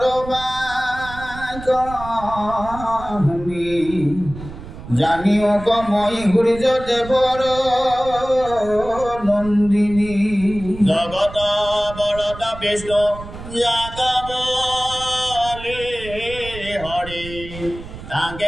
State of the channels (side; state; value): right; noise; rumble, 13 dB below the sound